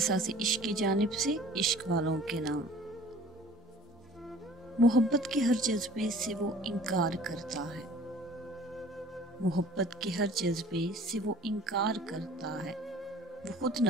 عشق کی جانب سے عشق والوں کے نام۔ محبت کے ہر جذبے سے وہ انکار کرتا ہے، محبت کے ہر جذبے سے وہ انکار کرتا ہے، وہ خود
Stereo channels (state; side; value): normal; both; correlation 0.49